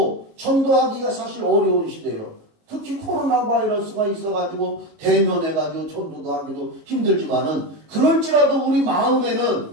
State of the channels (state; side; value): late; left; 18 ms